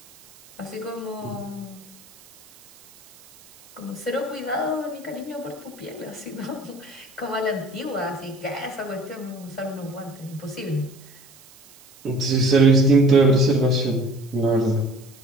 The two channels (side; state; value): right; noise; hiss, 24 dB below the sound